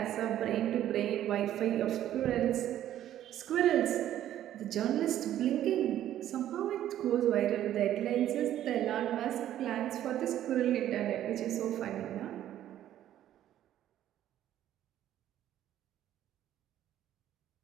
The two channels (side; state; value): left; quieter; 12.0 dB